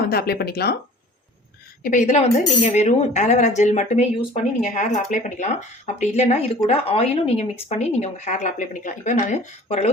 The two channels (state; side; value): normal; both; correlation 0.46